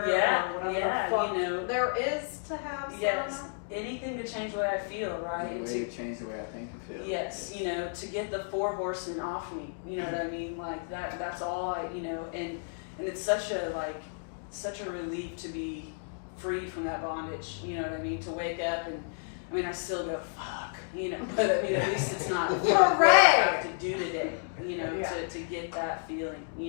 Yeah, or whatever yeah, the fuck you know. there is to have. Yes, anything to change the way I feel, right? The way to change the way I think and feel. Yes, you know, to get the 4 horsemen off me, you know what I mean? Like that's all you know, and it's such a relief to be free from that bondage, you know what I mean? To wake up and, I mean, I still go, fuck, you know, but I mean, at least it's not what I have to do today, you know, to get that feeling,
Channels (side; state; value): right; silent; digital silence